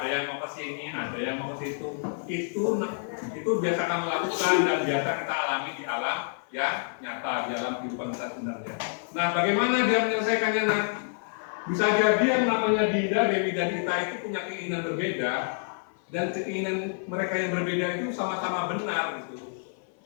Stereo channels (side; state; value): right; silent; 56 dB below the other